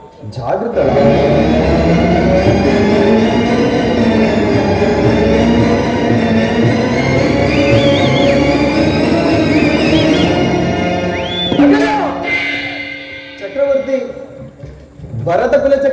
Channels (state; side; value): identical; both; correlation 1.00